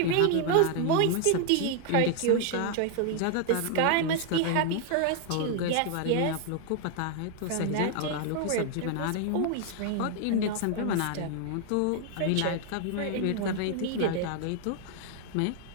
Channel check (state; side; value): different; both; correlation 0.00